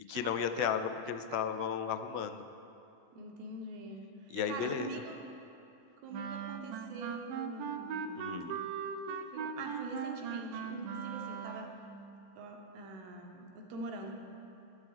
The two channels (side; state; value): left; late; 15 ms